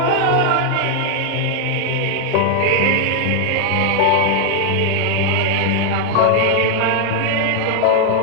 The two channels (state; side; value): different; both; correlation 0.00